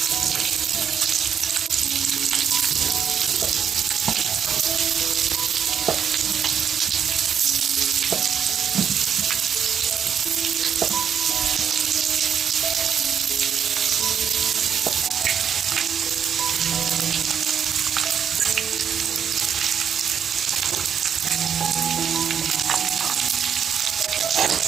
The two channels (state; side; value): quieter; left; 7.9 dB